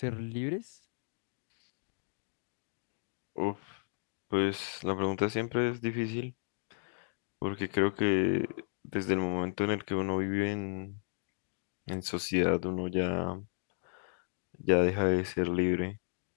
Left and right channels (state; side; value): silent; right; digital silence